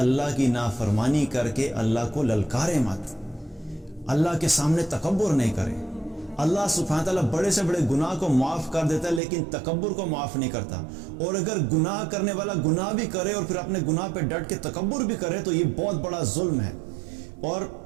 کی نافرمانی کر کے اللہ کو للکارے مت، اللہ کے سامنے تکبر نہیں کرے۔ اللہ سبحانہ تعالیٰ بڑے سے بڑے گناہ کو معاف کر دیتا ہے، لیکن تکبر کو معاف نہیں کرتا۔ اور اگر گناہ کرنے والا گناہ بھی کرے اور پھر اپنے گناہ پہ ڈٹ کے تکبر بھی کرے تو یہ بہت بڑا ظلم ہے۔ اور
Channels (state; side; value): drops out; left; at 9.2 s